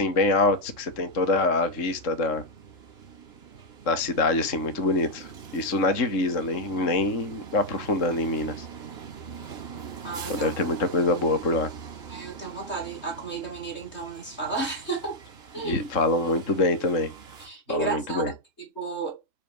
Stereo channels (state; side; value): late; right; 3.6 ms